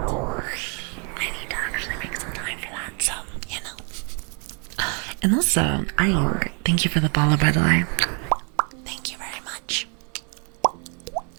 I need to actually make some time for that, so, And also, I thank you for the follow, by the way. Thank you very much.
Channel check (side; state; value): left; quieter; 37.2 dB